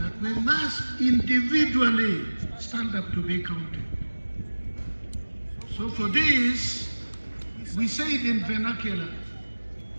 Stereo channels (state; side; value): inverted; both; correlation -1.00